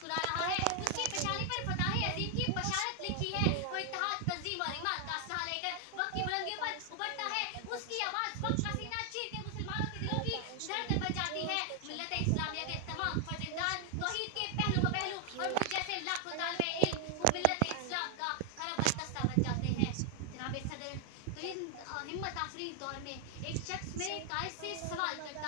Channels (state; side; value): different; both; correlation 0.00